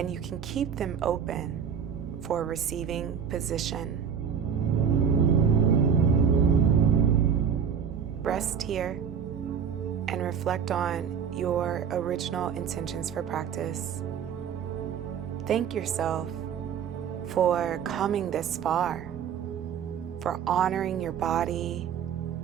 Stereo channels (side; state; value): left; quieter; 7.6 dB